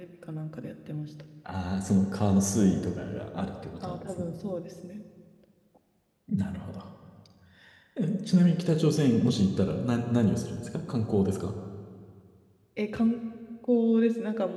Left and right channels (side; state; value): both; identical; correlation 1.00